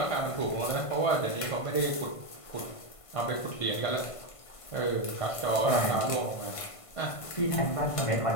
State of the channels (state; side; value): late; right; 1.5 ms